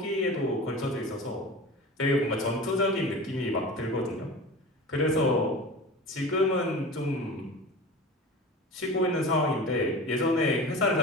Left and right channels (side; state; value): both; normal; correlation 0.33